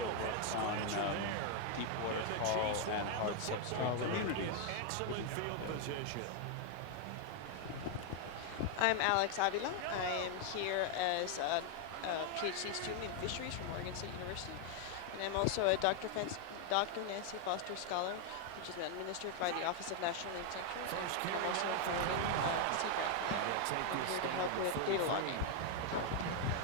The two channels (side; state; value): both; different; correlation 0.00